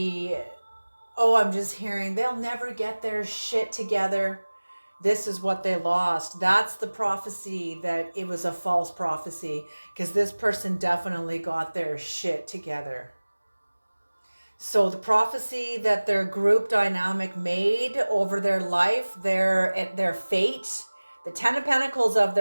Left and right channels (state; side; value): inverted; both; correlation -1.00